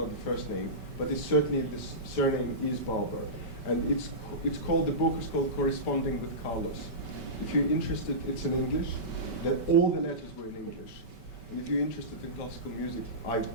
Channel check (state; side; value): late; right; 5.2 ms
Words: the first name, but it's certainly the surname is Barber, and it's called, the book is called Corresponding with Carlos. If you're interested, it's in English. That all the letters were in English. And if you're interested in classical music, I